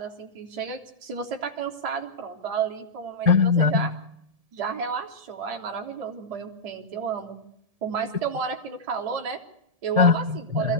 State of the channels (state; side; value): late; left; 1.7 ms